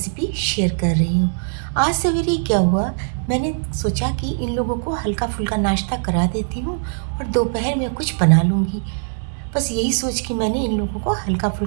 शेयर कर रही हूँ। आज सवेरे क्या हुआ, मैंने सोचा कि इन लोगों को हल्का फुल्का नाश्ता करा देती हूँ और दोपहर में कुछ बना लूँगी। बस यही सोच के मैंने इन लोगों को हल्का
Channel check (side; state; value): left; silent; digital silence